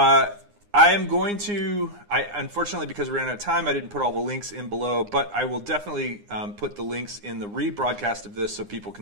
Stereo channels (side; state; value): left; late; 9.7 ms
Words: am going to, unfortunately, because we ran out of time, I didn't put all the links in below, but I will definitely put the links in the rebroadcast of this so people can